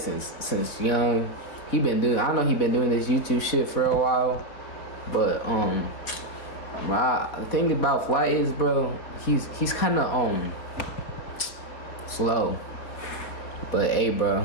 young. I know he been doing this YouTube shit for a while, but the thing about Flight is, bro, he's kind of slow. But hey,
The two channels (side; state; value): right; late; 4.2 ms